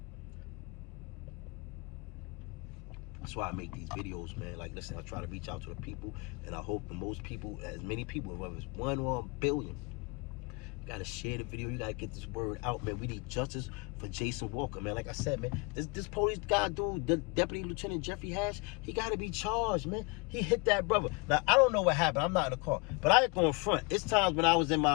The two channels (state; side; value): quieter; right; 29.4 dB